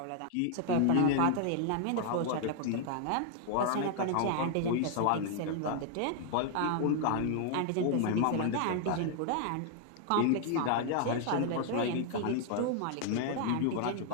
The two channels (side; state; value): both; different; correlation 0.00